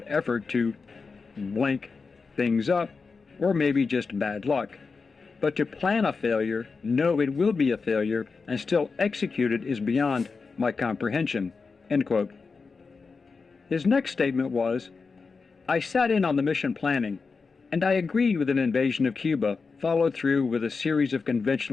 effort to blank things up, or maybe just bad luck. But to plan a failure, know it will be a failure, and still execute it is beyond my comprehension." End quote. His next statement was, "I sat in on the mission planning, and I agreed with an invasion of Cuba, followed through with a series of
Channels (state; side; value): quieter; right; 4.7 dB